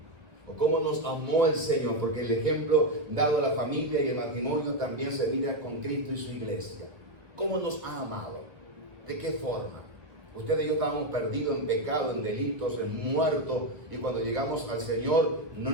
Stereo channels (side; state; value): left; late; 1.3 ms